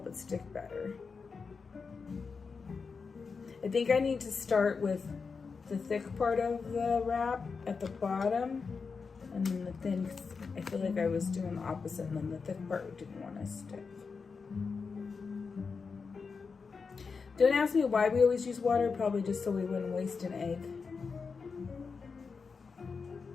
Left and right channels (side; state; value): right; quieter; 5.1 dB